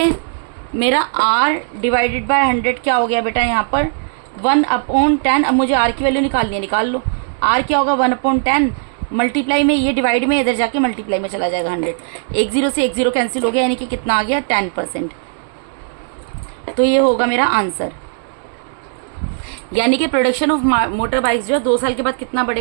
मेरा आर डिवाइडेड बाय 100 क्या हो गया बेटा, यहाँ पर 1 अपॉन 10। अब मुझे आर की वैल्यू निकालनी है, निकाल लो। आर क्या होगा, 1 अपॉन 10 मल्टीप्लाई में, ये डिवाइड में, इधर जाके मल्टीप्लाई में चला जाएगा 100, एक जीरो से एक जीरो कैंसिल हो गया, यानी कि कितना आ गया, 10%। तो ये होगा मेरा आंसर, यानी कि प्रोडक्शन ऑफ मोटर बाइक्स जो है 2 साल के बाद कितना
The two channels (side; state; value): left; silent; 67 dB below the other